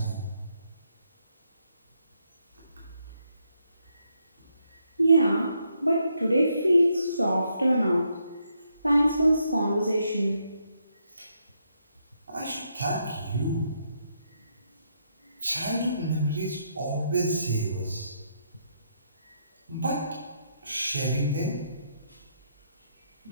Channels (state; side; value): inverted; both; correlation -0.77